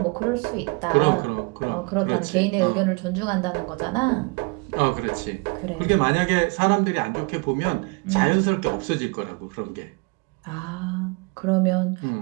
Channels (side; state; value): left; quieter; 30.3 dB